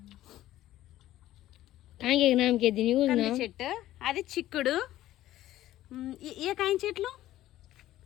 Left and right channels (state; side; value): quieter; right; 14.3 dB